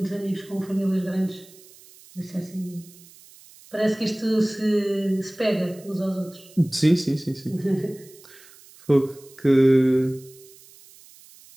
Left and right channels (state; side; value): noise; right; hiss, 23 dB below the sound